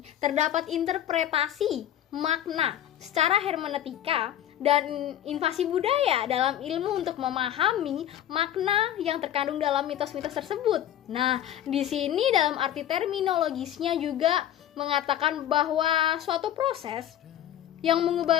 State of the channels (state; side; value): quieter; right; 11.4 dB